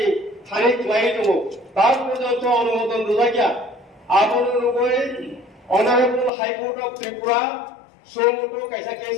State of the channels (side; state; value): right; drops out; at 6.3 s